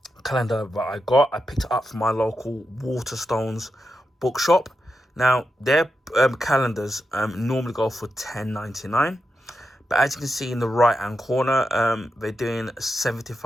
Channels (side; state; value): both; normal; correlation 0.87